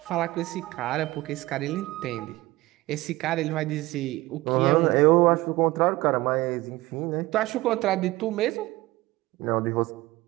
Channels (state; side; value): quieter; left; 19.1 dB